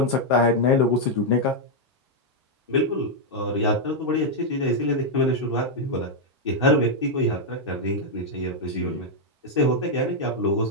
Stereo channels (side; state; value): both; normal; correlation -0.02